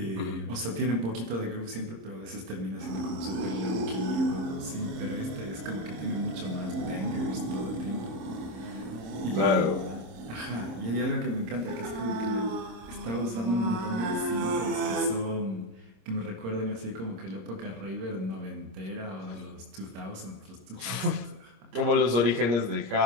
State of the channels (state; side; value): late; left; 26 ms